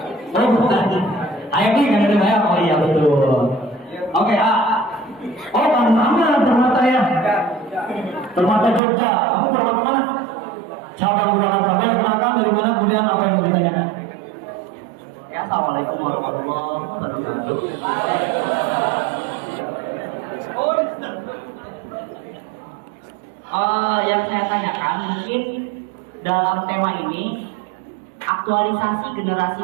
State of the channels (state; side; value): drops out; left; at 8.8 s